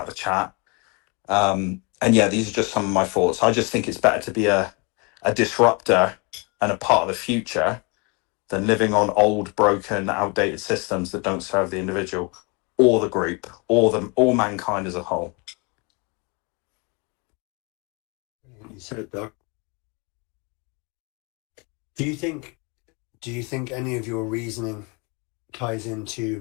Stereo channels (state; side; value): quieter; right; 30.9 dB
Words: of the chat. And yeah, these are just some of my thoughts. I just think it's better to be a disruptor and a part of the future than living on old, broken, outdated systems that don't serve the individual or the group or mankind as a whole. You said it, Doc. Do you think any of your reasoning ties